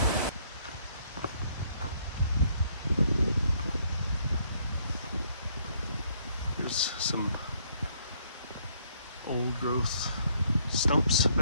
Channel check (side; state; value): both; inverted; correlation -0.68